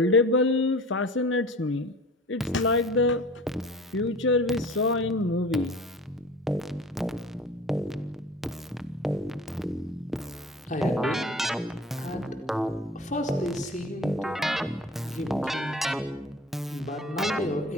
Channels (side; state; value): both; normal; correlation 0.42